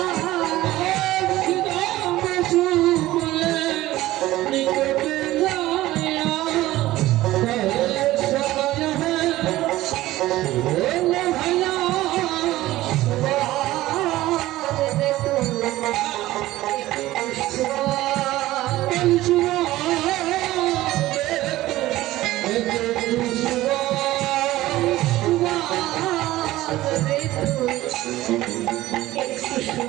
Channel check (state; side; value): quieter; left; 16.4 dB